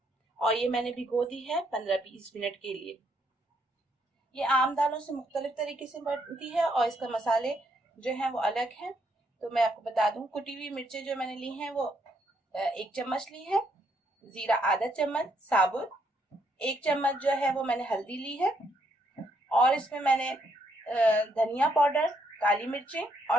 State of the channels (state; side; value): normal; both; correlation 0.74